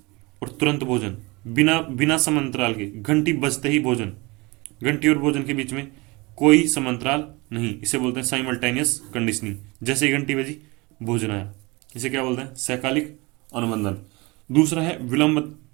और तुरंत भोजन, बिना बिना समांतराल के, घंटी बजते ही भोजन, घंटी और भोजन के बीच में कोई समांतराल नहीं, इसे बोलते हैं साइमल्टेनियस कंडीशनिंग। जैसे ही घंटी बजी भोजन आया, इसे क्या बोलते हैं? सहकालिक अनुबंधन। दूसरा है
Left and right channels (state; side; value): quieter; left; 25.1 dB